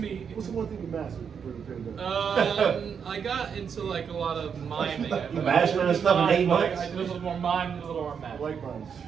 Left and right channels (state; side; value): quieter; left; 7.0 dB